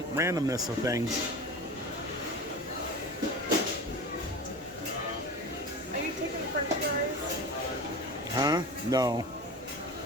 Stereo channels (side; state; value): both; normal; correlation 0.32